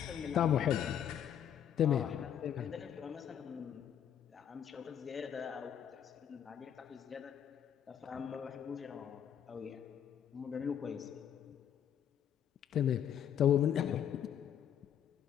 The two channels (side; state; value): right; quieter; 9.3 dB